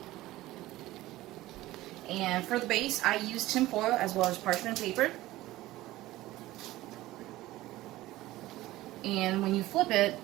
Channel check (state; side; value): quieter; left; 16.9 dB